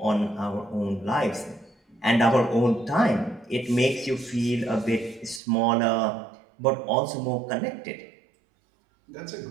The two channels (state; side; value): drops out; left; at 5.4 s